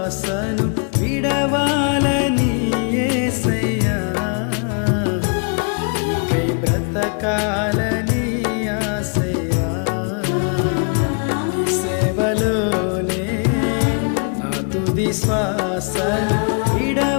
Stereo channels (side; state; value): right; quieter; 39.4 dB